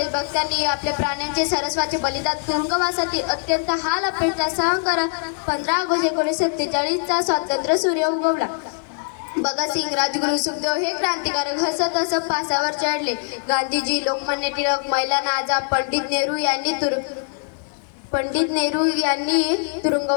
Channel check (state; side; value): silent; right; digital silence